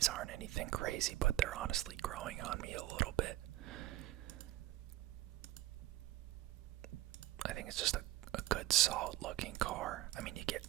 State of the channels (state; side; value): quieter; left; 15.5 dB